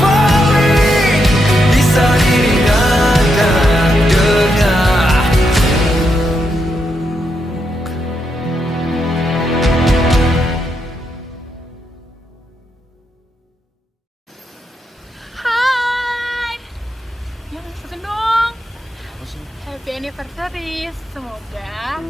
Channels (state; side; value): normal; both; correlation 0.82